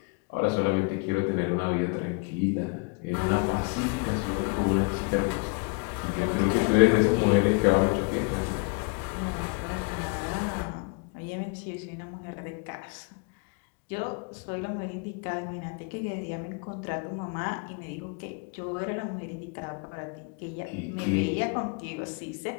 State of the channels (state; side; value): quieter; right; 33.4 dB